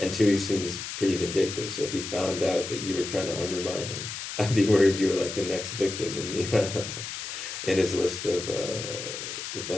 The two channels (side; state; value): left; noise; hiss, 7 dB below the sound